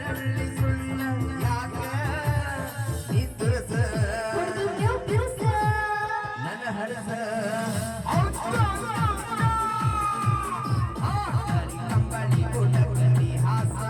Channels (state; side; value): identical; both; correlation 1.00